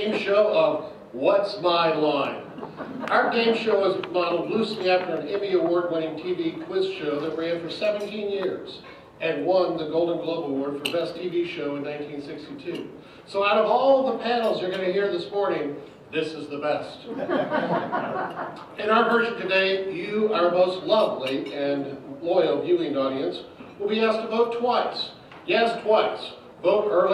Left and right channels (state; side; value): identical; both; correlation 1.00